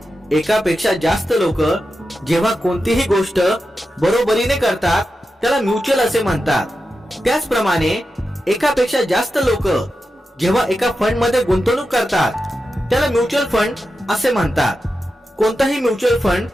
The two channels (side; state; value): both; normal; correlation 0.90